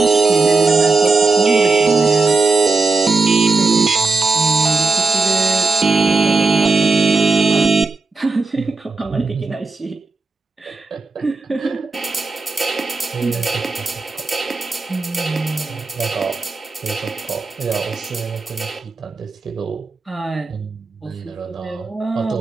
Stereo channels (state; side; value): quieter; left; 3.9 dB